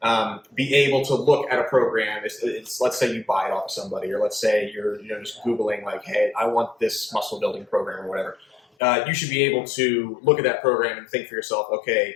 be able to look at a program. Let's say you buy it off of somebody, or let's say you're just Googling like, hey, I want this muscle building program or whatever. You should be able to look at that program and think for yourself, okay,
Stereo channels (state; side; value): drops out; right; at 8.6 s